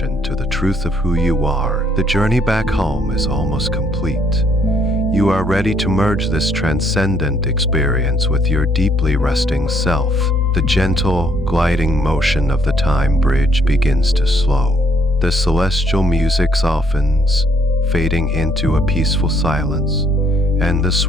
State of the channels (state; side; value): normal; both; correlation 0.68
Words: to the truth of who you are. The journey back home is almost complete. You are ready to merge this transcendent experience with your deeply resting self. The gentle, gliding motion of the time bridge begins to slow. The celestial music softens, fading into a peaceful silence, and the